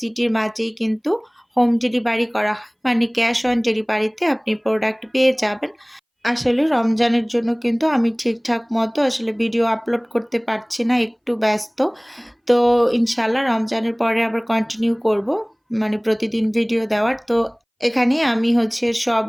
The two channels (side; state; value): both; identical; correlation 1.00